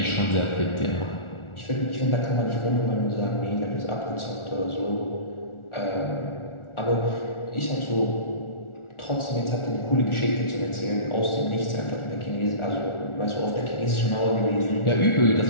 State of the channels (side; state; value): right; late; 1.4 ms